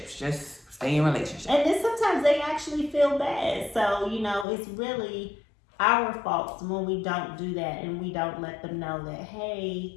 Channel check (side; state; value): right; drops out; at 4.5 s